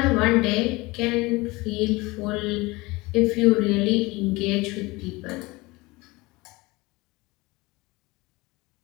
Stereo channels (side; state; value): right; quieter; 22.7 dB